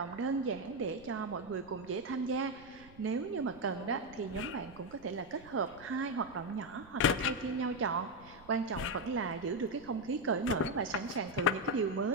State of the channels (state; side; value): noise; right; rumble, 22 dB below the sound